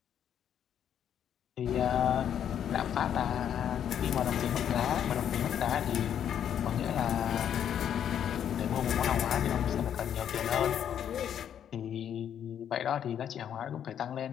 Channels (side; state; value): right; quieter; 9.3 dB